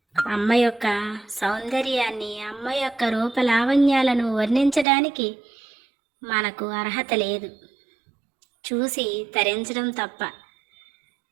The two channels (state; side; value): drops out; left; at 4.9 s